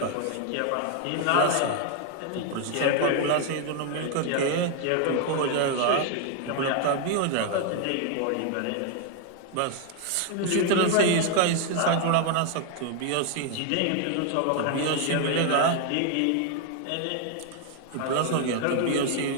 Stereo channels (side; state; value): both; different; correlation 0.00